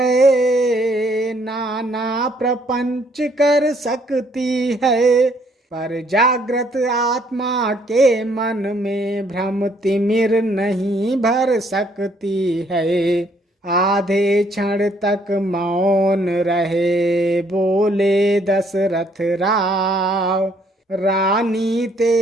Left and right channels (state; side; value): normal; both; correlation 0.66